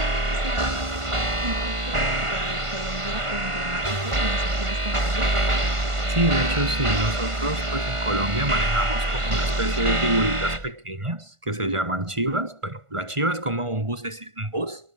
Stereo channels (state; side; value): late; left; 1.5 ms